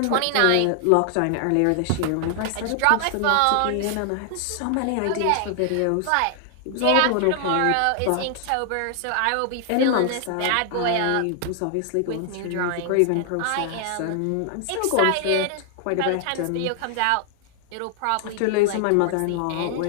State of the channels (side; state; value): both; different; correlation 0.00